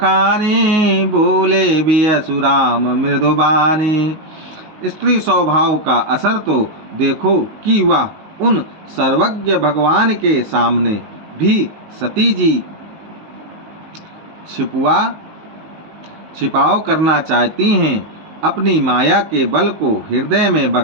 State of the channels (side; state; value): left; late; 19 ms